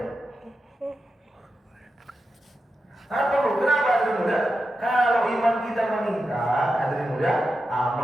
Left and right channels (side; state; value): both; normal; correlation 0.89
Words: Apa perlu? Kenapa hadirin mulia? Kalau iman kita meningkat, hadirin mulia,